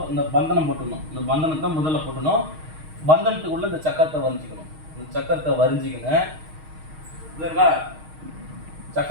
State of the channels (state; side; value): late; left; 6.4 ms